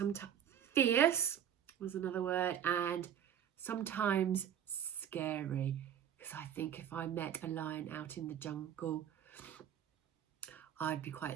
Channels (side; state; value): left; quieter; 9.5 dB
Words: fierce was another word, and sometimes scary, because I think if I met a lion out in the jungle, I'd be